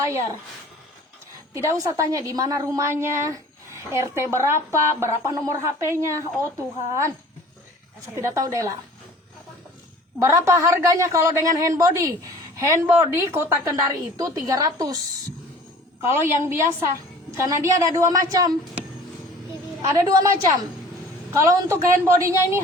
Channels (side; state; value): both; normal; correlation 0.46